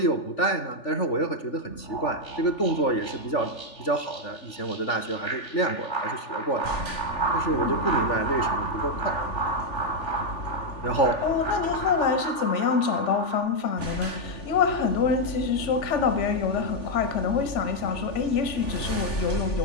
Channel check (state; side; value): late; right; 3.4 ms